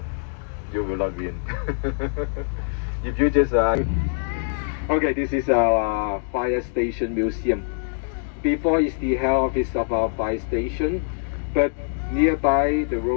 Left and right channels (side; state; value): right; silent; digital silence